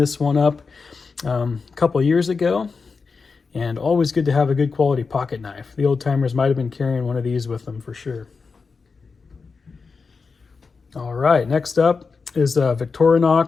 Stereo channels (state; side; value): quieter; right; 4.8 dB